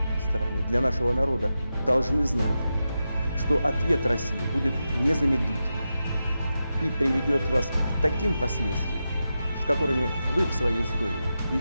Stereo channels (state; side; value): inverted; both; correlation -0.90